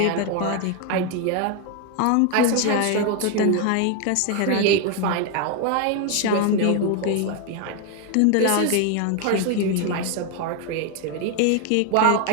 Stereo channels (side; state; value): both; different; correlation 0.01